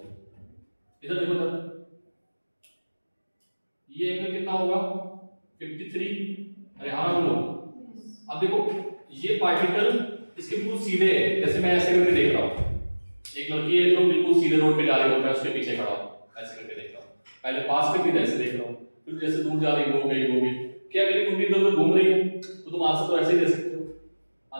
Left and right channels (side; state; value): both; inverted; correlation -1.00